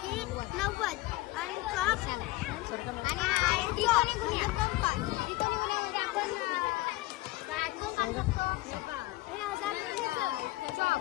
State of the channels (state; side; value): quieter; right; 19.0 dB